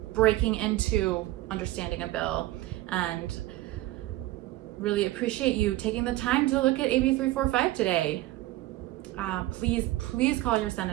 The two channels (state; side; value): quieter; left; 16.7 dB